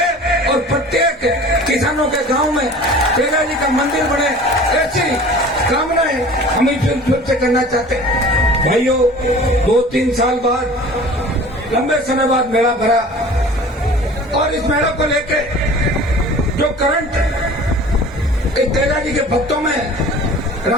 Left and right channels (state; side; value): normal; both; correlation 0.43